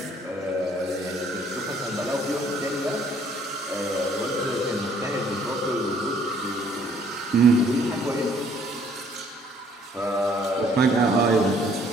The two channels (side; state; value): both; normal; correlation 0.61